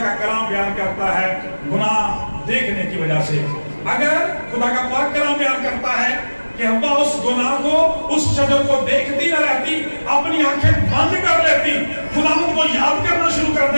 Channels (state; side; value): inverted; both; correlation -1.00